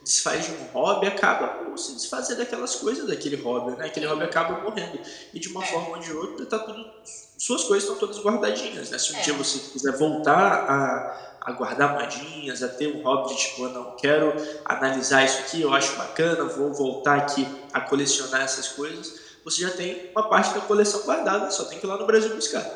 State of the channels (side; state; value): both; identical; correlation 1.00